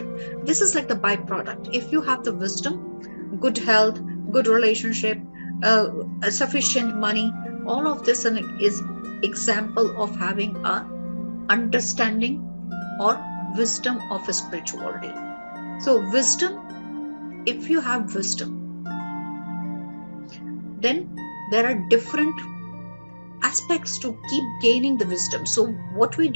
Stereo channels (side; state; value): both; inverted; correlation -1.00